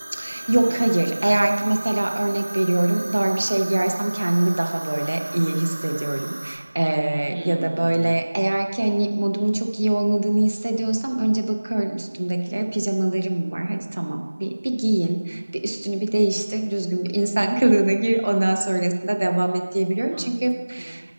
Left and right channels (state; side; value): inverted; both; correlation -1.00